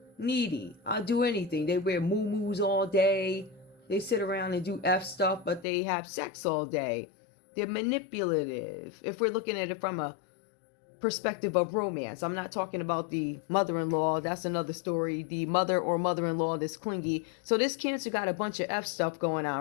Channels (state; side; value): drops out; right; at 5.7 s